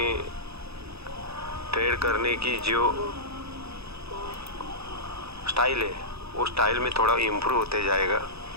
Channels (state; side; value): late; left; 0.78 ms